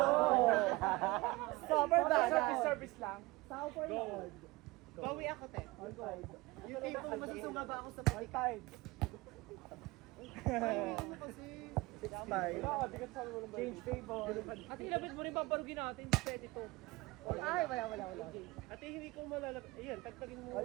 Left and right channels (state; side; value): quieter; left; 21.6 dB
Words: Stopper ba? Service lang. Stopper na all. Bawi ako, te. All five. Yung tipong masusungaba ako sa All five. Five. Change table. At ilapit mo rin paparugin natin. Pwede to. Ay, wala. Ate, hindi ko malalap. Ayan, tagtagin mo